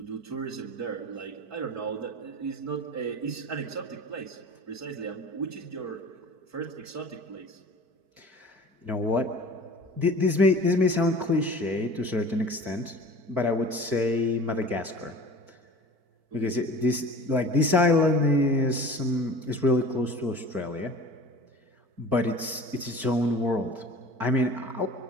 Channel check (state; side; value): late; left; 4.5 ms